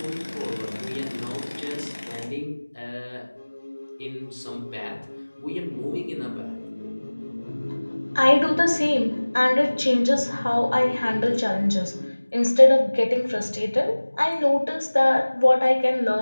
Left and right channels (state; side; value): inverted; both; correlation -1.00